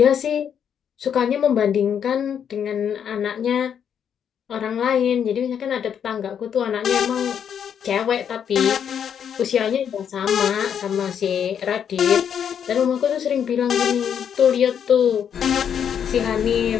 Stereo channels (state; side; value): quieter; right; 8.3 dB